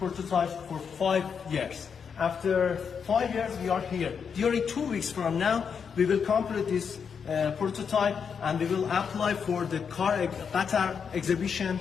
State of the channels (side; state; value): right; quieter; 6.6 dB